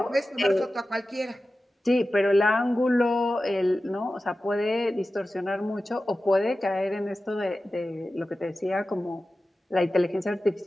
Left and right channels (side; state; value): both; normal; correlation 0.94